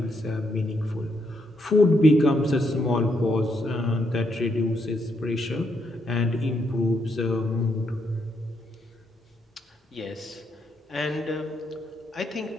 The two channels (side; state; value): both; normal; correlation 0.77